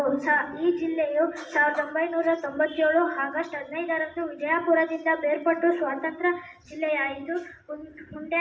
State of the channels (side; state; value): both; identical; correlation 1.00